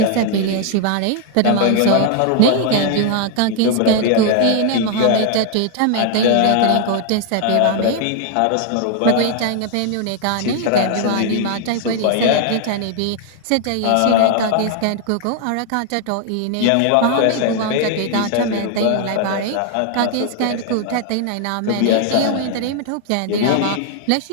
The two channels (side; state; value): both; different; correlation 0.00